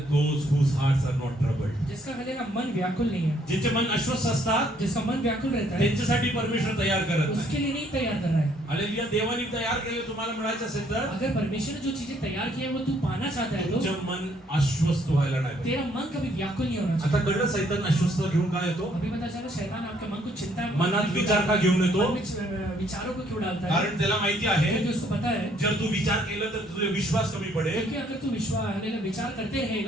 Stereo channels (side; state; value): both; normal; correlation 0.66